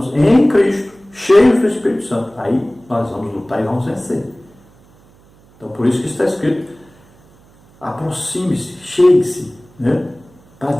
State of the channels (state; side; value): noise; right; hum, 29 dB below the sound